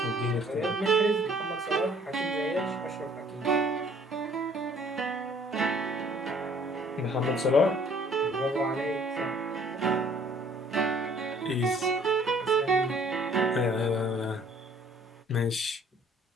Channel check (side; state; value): both; normal; correlation 0.58